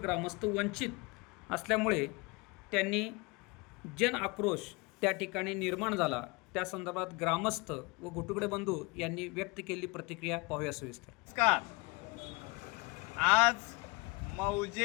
वंचित असल्यामुळे त्यांनी जन आक्रोश त्या ठिकाणी निर्माण झाला। त्या संदर्भात ग्रामस्थ व घोटुगडे बंधू यांनी व्यक्त केलेली प्रतिक्रिया पाहूया सविस्तर। नमस्कार। आज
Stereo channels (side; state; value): right; quieter; 26.9 dB